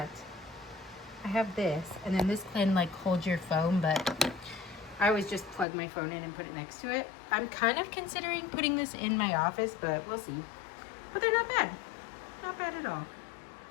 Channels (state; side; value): drops out; right; at 5.7 s